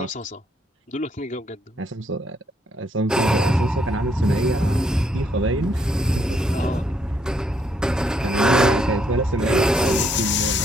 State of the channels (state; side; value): normal; both; correlation 0.72